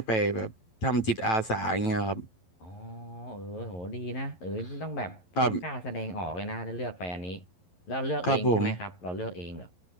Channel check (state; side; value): late; right; 11 ms